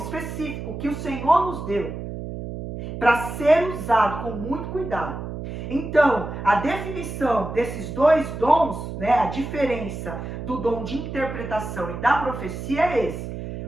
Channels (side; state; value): right; noise; hum, 7 dB below the sound